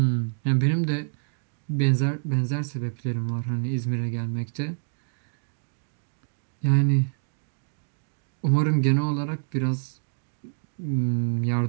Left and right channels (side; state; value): left; silent; digital silence